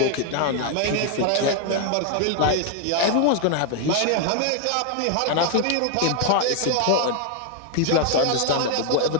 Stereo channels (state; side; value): different; both; correlation 0.00